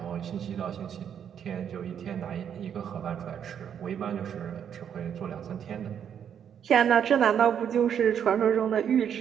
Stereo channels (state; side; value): quieter; left; 8.5 dB